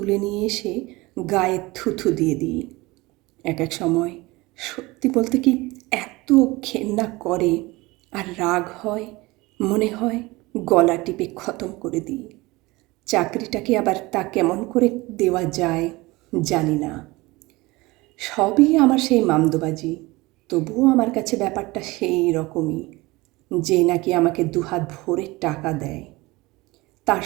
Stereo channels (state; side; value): quieter; left; 21.8 dB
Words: নিয়ে এসে গায়ে থুথু দিয়ে দিই। এক এক সময় সত্যি বলতে কি এত ঘেন্না করে আর রাগ হয়, মনে হয় গলা টিপে খতম করে দিই। চাকরিটাকে আবার তা কেমন করে দেওয়া যায় জানি না। সবই আমার সেই মামদোবাজি, তবুও আমার কাছে ব্যাপারটা সেই রকমই, যে নাকি আমাকে দুহাত ভরে টাকা দেয়, তার